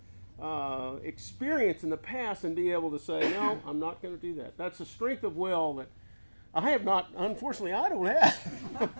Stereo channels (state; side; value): inverted; both; correlation -1.00